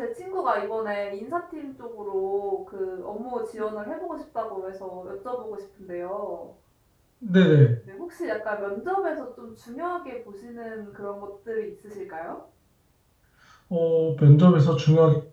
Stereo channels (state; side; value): identical; both; correlation 1.00